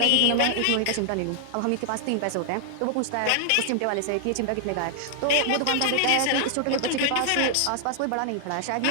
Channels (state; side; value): different; both; correlation 0.00